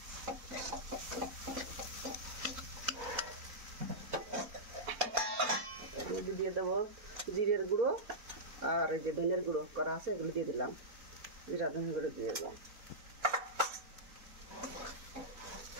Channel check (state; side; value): late; left; 4.1 ms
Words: দিয়ে দেবো জিরের গুঁড়ো, আর এই যে ধনের গুঁড়ো করা আছে এগুলো দিয়ে দিলাম, জিরা ধনের গুঁড়ো দিয়ে দিলাম।